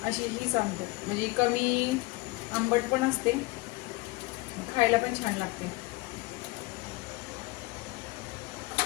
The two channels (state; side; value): quieter; right; 23.0 dB